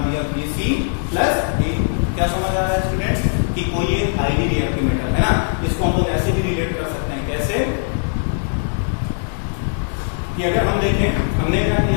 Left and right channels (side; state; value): right; silent; 64 dB below the other